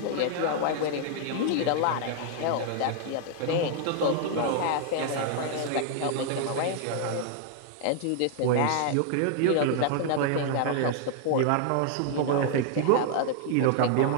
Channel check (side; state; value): both; different; correlation 0.00